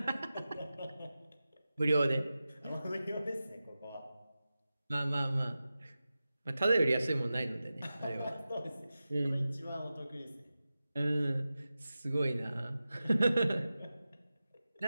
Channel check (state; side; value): inverted; both; correlation -0.94